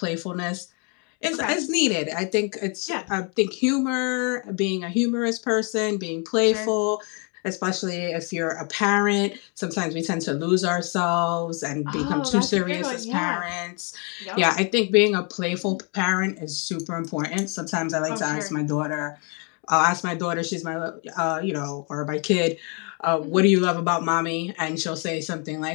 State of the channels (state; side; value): quieter; right; 36.1 dB